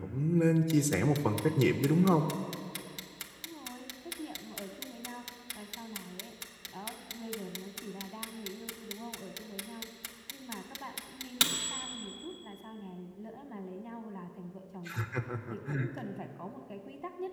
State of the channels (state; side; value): identical; both; correlation 1.00